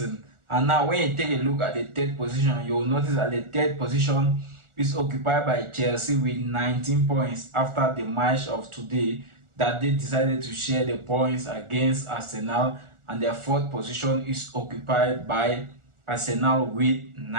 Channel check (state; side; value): late; left; 1.4 ms